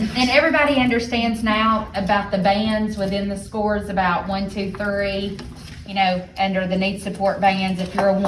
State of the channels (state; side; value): identical; both; correlation 1.00